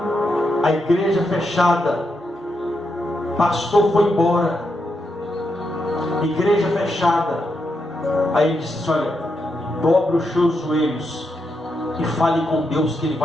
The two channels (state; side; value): normal; both; correlation 0.83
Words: a igreja fechada, pastor foi embora, igreja fechada, aí ele disse assim: olha, dobre os seus joelhos e fale com Deus que Ele